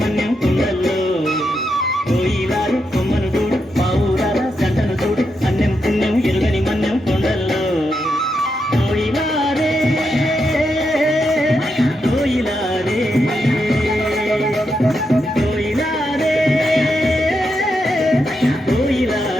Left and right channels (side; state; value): both; normal; correlation 0.84